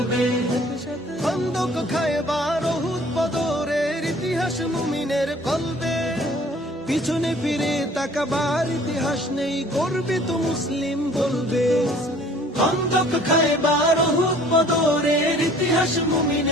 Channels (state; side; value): normal; both; correlation 0.53